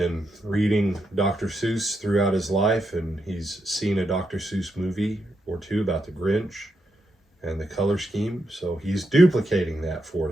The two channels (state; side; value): normal; both; correlation 0.82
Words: reading Dr. Seuss throughout his life, and he's seen a Dr. Seuss movie or two about the Grinch and the color scheme. So he's duplicating that for